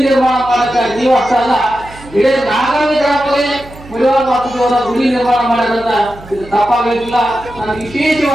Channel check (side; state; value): right; noise; hum, 19 dB below the sound